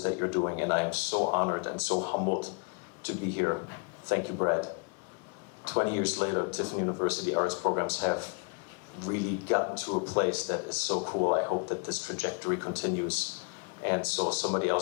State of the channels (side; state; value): right; quieter; 35.6 dB